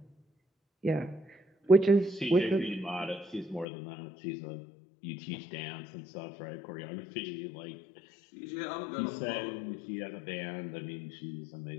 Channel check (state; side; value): drops out; right; at 3.7 s